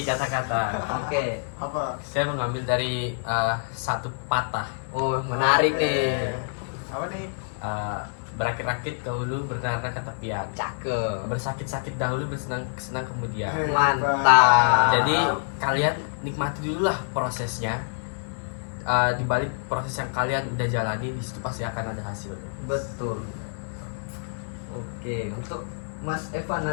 kata-kata. Oke. Apa? Saya mengambil dari satu patah. Oh, menarik nih. Apa nih? Berakit-rakit dahulu, bernara ke tepian. Cakep. Bersakit-sakit dahulu, bersenang-senang kemudian. Mantap. Jadi kalian nikmati dulu lah prosesnya. Di balik proses yang kalian udah jalani, di situ pasti akan ada hasilnya. Betul. Oke, untuk Mas Evan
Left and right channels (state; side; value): silent; right; digital silence